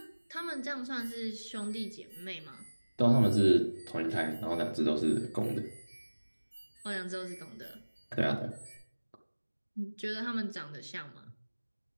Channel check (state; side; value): inverted; both; correlation -1.00